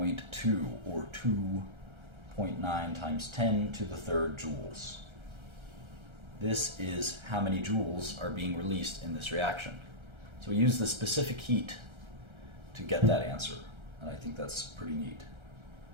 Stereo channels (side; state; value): left; late; 1.3 ms